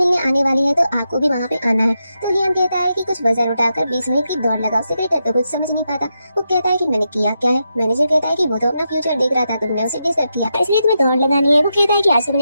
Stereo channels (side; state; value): both; inverted; correlation -0.85